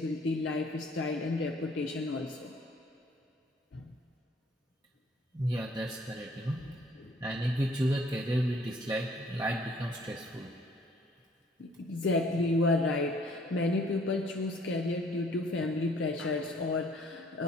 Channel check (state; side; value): normal; both; correlation 0.59